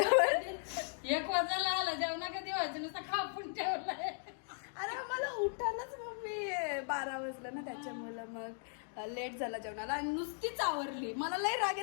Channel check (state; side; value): silent; right; 53 dB below the other